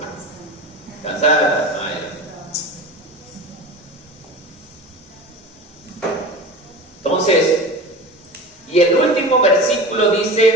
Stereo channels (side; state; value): both; normal; correlation 0.32